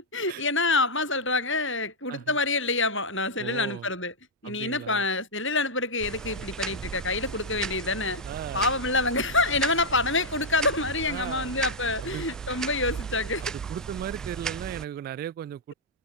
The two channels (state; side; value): normal; both; correlation -0.04